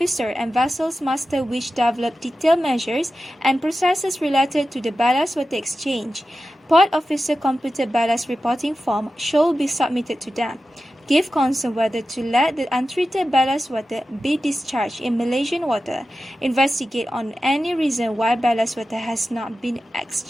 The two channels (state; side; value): normal; both; correlation 0.93